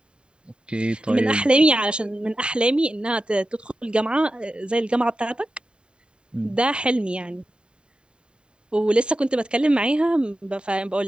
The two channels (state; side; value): late; left; 0.051 ms